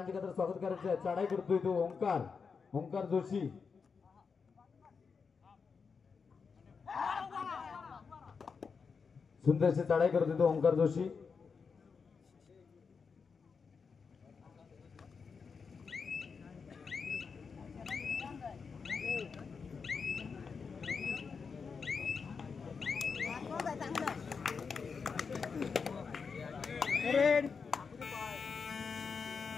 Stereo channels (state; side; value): quieter; right; 5.5 dB